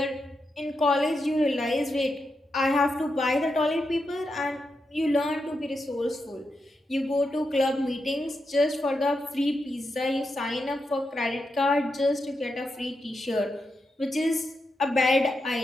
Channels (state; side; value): normal; both; correlation 0.86